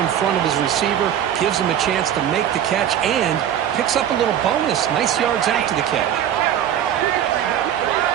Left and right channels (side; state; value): left; quieter; 10.1 dB